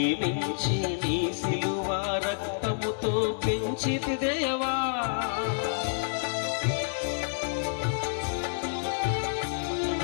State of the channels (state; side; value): silent; right; digital silence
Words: నీ సిలువ రక్తముతో పెంచితి దేవా.